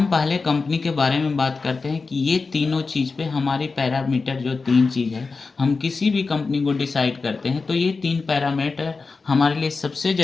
पहले कंपनी के बारे में बात करते हैं कि ये तीनों चीज़ पे हमारी पैरामीटर जो 3 चीज़ है, हम किसी भी कंपनी को डिसाइड करते हैं तो ये 3 पैरामीटर हमारे लिए सबसे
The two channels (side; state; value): right; quieter; 4.3 dB